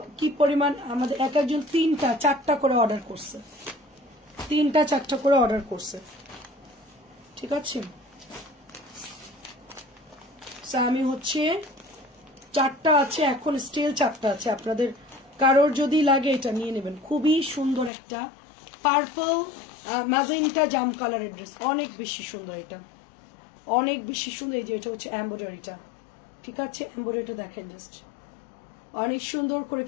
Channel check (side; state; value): right; drops out; at 17.9 s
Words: কি পরিমাণ আমাদের এক একজন 3টা 4টা করে অর্ডার করছে, 3টা 4টা করে অর্ডার করছে, ঠিক আছে? আমি হচ্ছে 4টা আছে এখন, স্টিল 4টা আছে। আপনাদের কারোর যদি লাগে এটা নিয়ে নেবেন। খুবই সুন্দর একটা পার্পল ম্যাজেন্টা জাম কালারের ড্রেস, অনেক বেশি সুন্দর, এটা অনেক বেশি সুন্দর। এই যে এটা হচ্ছে এমব্রয়ডারিটা, ঠিক আছে, এমব্রয়ডারিটা দেখেন জাস্ট, অনেক সুন্দর করে